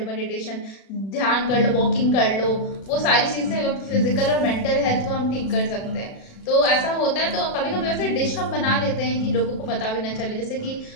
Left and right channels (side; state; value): right; late; 36 ms